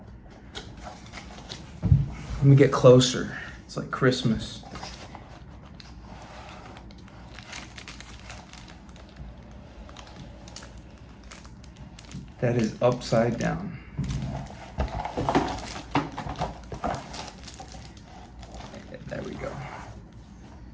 Let me get closer. It's like Christmas. That is upside down. There we go.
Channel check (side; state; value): both; identical; correlation 1.00